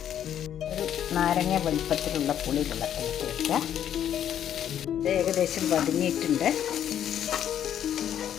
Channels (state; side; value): quieter; right; 10.1 dB